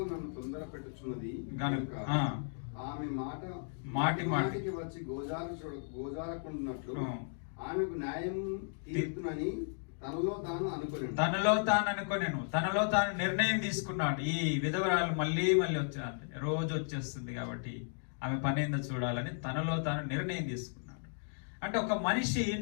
నన్ను తొందర పెట్టుచున్నది గనుక ఆమె మాటి మాటికి వచ్చి గోజారకుంటున్నట్లు ఆమెకు న్యాయం తీర్చునని తనలో తాను నిర్ణయం తీసుకున్నాడు. ఈ విధవరాలు మళ్ళీ రోజు వచ్చేస్తుంది కాబట్టి ఆమె పని ఏందో చూడాలని తనలో తాను నిర్ణయం తీసుకున్నాడు. అంటే ఒక మనిషి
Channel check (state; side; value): silent; right; digital silence